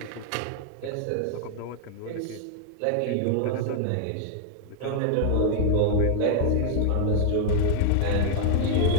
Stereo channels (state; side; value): different; both; correlation -0.01